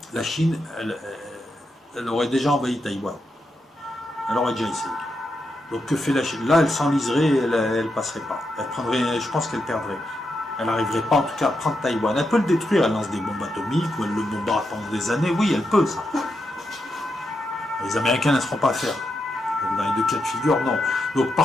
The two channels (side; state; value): both; normal; correlation 0.84